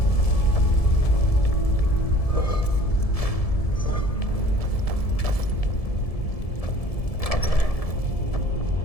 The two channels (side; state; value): right; late; 1.7 ms